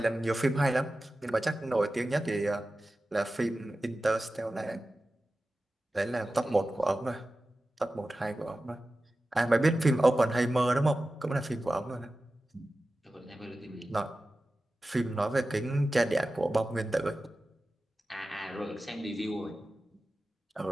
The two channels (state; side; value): normal; both; correlation 0.95